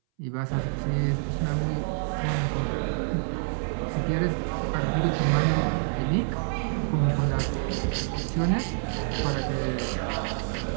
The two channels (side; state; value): left; silent; 60 dB below the other